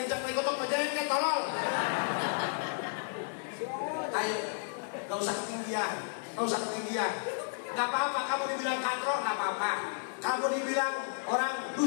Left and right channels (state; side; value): silent; right; 56 dB below the other